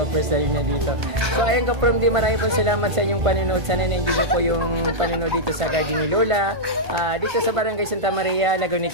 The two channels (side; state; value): left; late; 1.5 ms